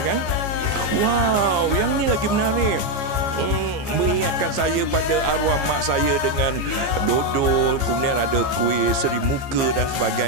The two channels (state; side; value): late; left; 15 ms